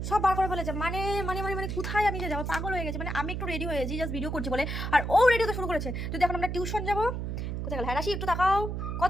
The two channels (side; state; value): right; noise; hum, 3 dB below the sound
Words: সব বার করে ফেলেছে। মানে মানে মানে মানে কোথায় আমি যাবো, পাগল হয়ে গেছে। মানে আমি একটু রেডি হয়েছি জাস্ট ভিডিও করছি বলে, আর ও রেডি হতে শুরু করেছে। যদি এখন আমরা টিউশন যাবো, কোথায় গেল? হ্যাঁ রাশি একটু তাকাও,